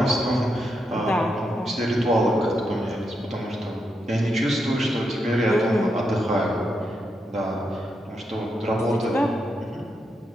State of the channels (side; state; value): both; normal; correlation 0.83